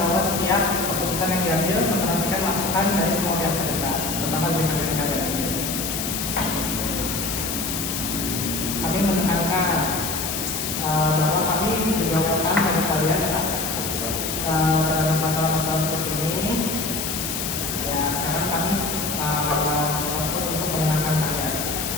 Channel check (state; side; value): noise; left; hiss, 3 dB below the sound